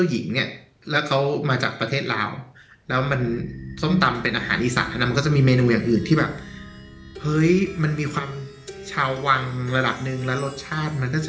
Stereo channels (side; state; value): both; identical; correlation 1.00